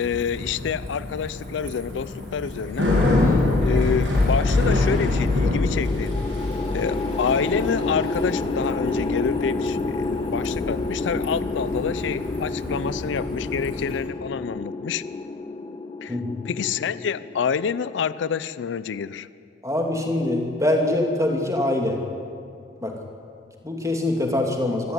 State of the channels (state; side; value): quieter; right; 3.2 dB